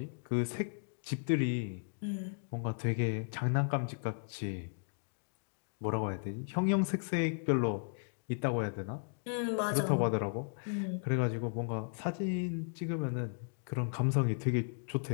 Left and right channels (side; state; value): right; silent; digital silence